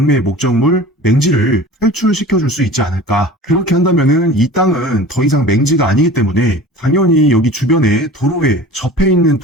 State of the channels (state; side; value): normal; both; correlation 0.40